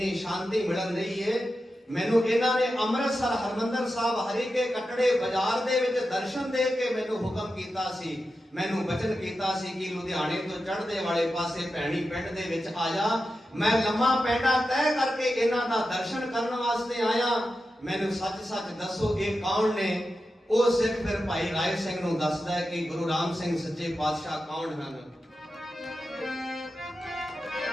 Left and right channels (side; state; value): both; normal; correlation 0.90